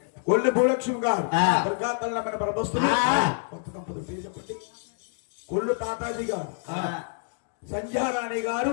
కొల్లి భూలక్ష్మి గారు దుర్గాతల్ల మన ప్రభస్తులు కొత్త దంపతులు పేరు చెప్పండి కొల్లు తాతాజీ గారు సంధ్యారాణి గారు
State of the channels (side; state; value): right; silent; digital silence